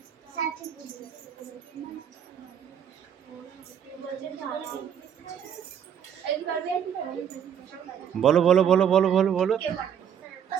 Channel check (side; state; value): left; quieter; 8.7 dB